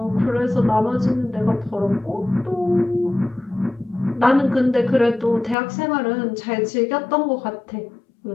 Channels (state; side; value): drops out; right; at 5.6 s